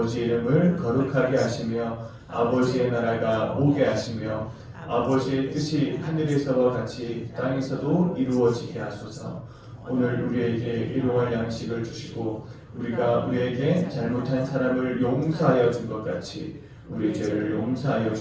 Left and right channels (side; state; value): both; identical; correlation 1.00